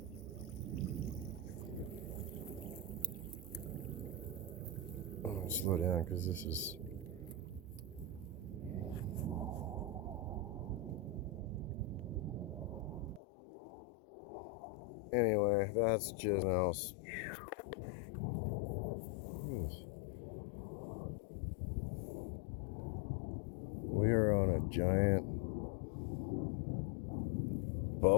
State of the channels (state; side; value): drops out; right; at 13.2 s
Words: Oh, slow down because this is... Anyway, that's just else. We are on a giant